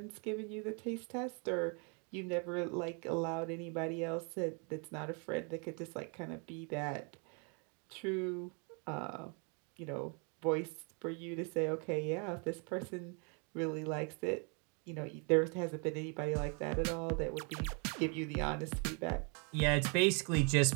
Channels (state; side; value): quieter; left; 36.1 dB